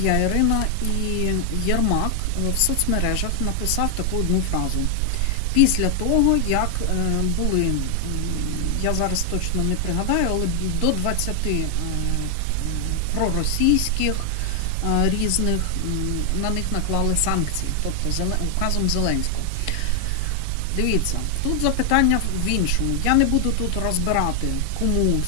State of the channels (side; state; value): both; different; correlation 0.00